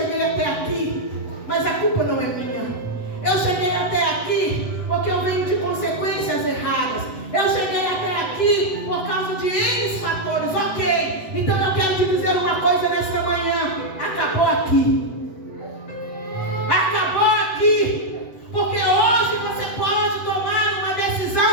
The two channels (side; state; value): right; late; 7.9 ms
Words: até aqui, mas a culpa não é minha. Eu cheguei até aqui porque eu venho de consequências erradas. Eu cheguei até aqui por causa de N fatores. Ok, então eu quero te dizer uma coisa nesta manhã: acabou aqui. Acabou aqui. Porque hoje você pode tomar uma